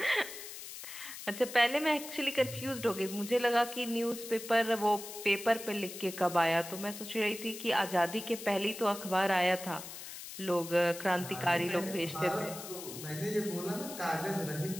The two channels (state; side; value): noise; left; hiss, 11 dB below the sound